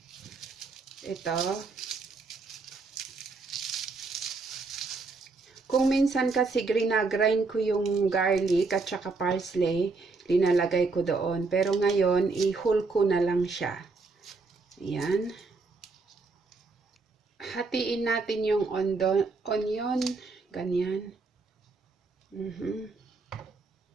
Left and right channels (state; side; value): quieter; left; 4.0 dB